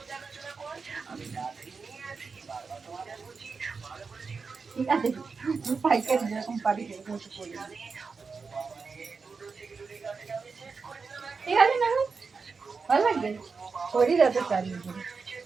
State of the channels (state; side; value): quieter; left; 4.9 dB